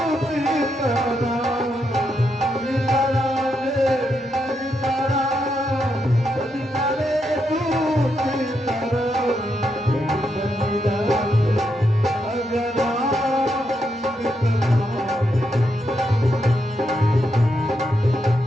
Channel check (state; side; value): normal; both; correlation 0.81